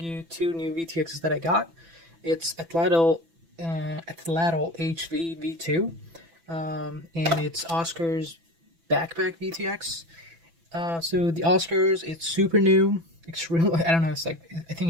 two new VTXs that I got. It's Atlatl HV V2, and it's Oscar's backpack VTX. So the Oscars, it's super new. Extremely, I don't know. I think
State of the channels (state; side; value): late; left; 6.0 ms